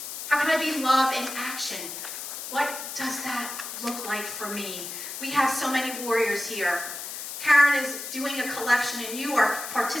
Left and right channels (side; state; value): left; noise; hiss, 8 dB below the sound